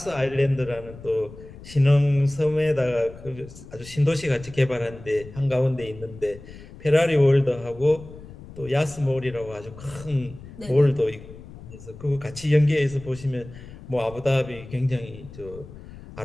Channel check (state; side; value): noise; left; rumble, 17 dB below the sound